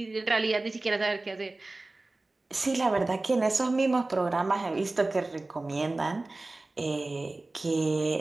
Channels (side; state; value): left; quieter; 3.0 dB